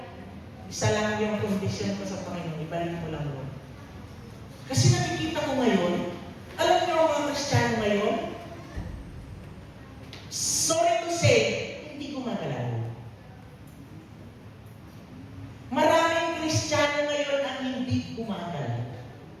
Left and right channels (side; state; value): both; identical; correlation 1.00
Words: Isa lang yung condition ko sa Panginoon. Ibalik mo lang, Lord. Kasi nakikita ko ngayon, alam niyo ang mga Kristiyano ngayon, sorry to say, hindi gumagalaw. Maraming Kristiyano ngayon ang hindi gumagalaw.